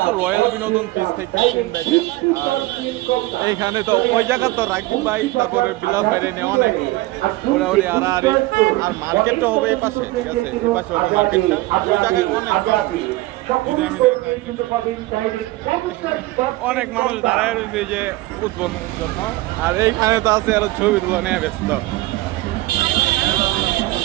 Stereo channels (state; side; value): quieter; left; 19.3 dB